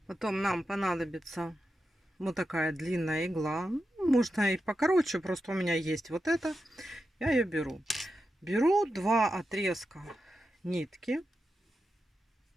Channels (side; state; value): both; normal; correlation 0.89